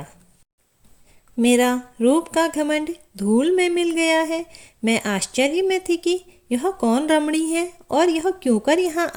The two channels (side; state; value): both; identical; correlation 1.00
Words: मेरा रूप का घमंड धूल में मिल गया है। मैं आश्चर्य में थी कि यह कौन रमणी है और यह क्यों कर यहाँ